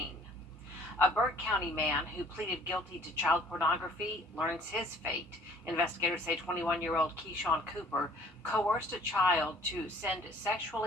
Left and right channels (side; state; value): both; normal; correlation 0.55